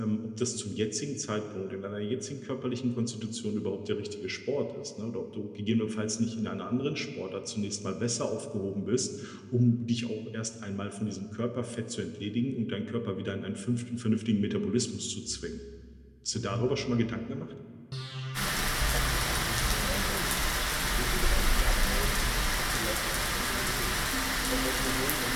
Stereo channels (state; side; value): identical; both; correlation 1.00